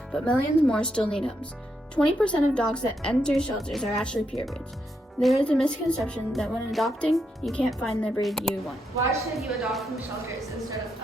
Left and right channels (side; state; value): both; normal; correlation 0.81